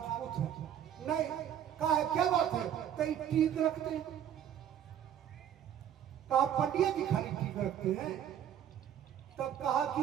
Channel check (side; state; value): left; quieter; 9.9 dB